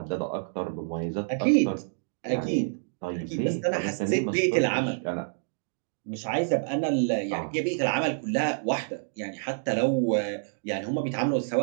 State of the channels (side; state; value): left; silent; digital silence